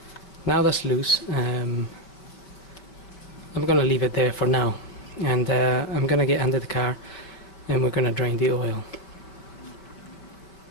now that's loose. I'm gonna leave it there for now, and I'm gonna get under the car and we're gonna drain the oil.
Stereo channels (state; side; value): late; right; 5.1 ms